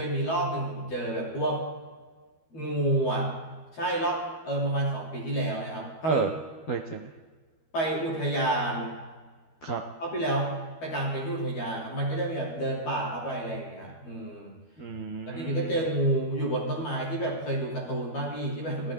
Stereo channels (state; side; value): late; right; 12 ms